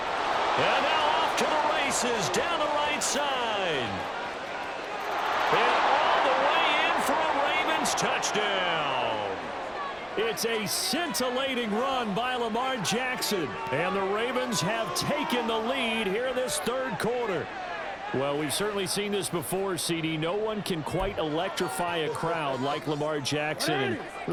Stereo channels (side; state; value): both; identical; correlation 1.00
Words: And now off to the races down the right side. And all the way in for a Ravens touchdown. It's a scintillating run by Lamar Jackson. And the Ravens have taken the lead here in this third quarter. Well, we've certainly seen this before, CD. No one can quite electrify a crowd like Lamar Jackson, and